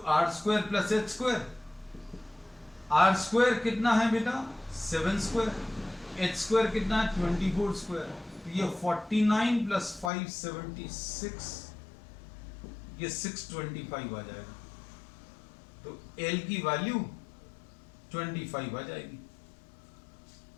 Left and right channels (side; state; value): right; drops out; at 10.1 s